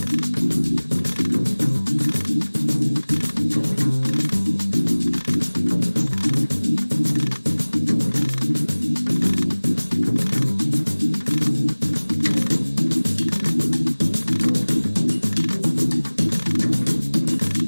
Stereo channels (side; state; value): both; inverted; correlation -1.00